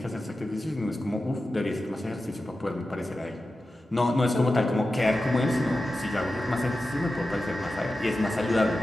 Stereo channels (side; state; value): both; normal; correlation 0.93